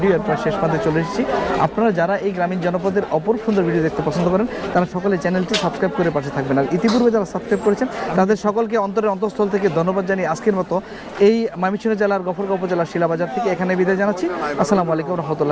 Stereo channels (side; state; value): both; identical; correlation 1.00